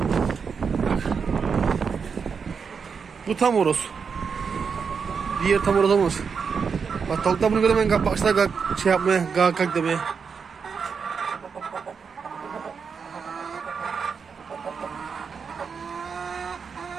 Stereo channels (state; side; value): quieter; left; 5.9 dB